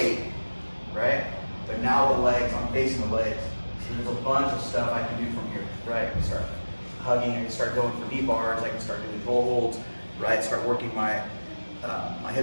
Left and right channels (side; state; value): both; inverted; correlation -1.00